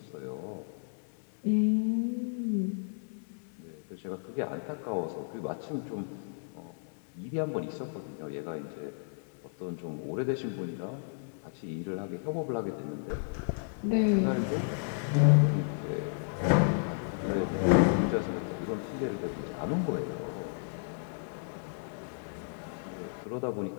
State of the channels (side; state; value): right; silent; digital silence